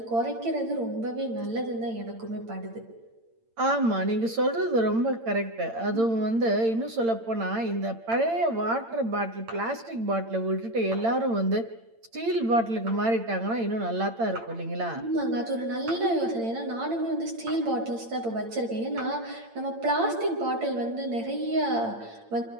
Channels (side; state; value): left; late; 8.8 ms